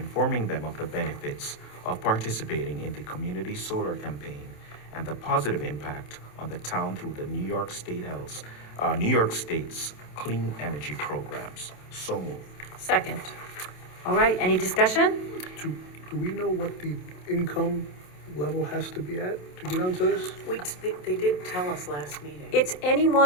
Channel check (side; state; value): right; late; 27 ms